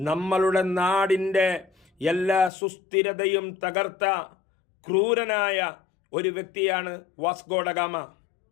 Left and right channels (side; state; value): right; drops out; at 2.5 s